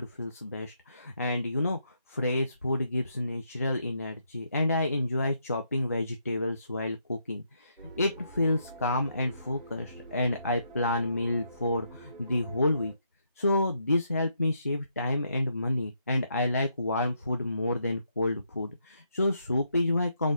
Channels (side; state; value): both; inverted; correlation -0.77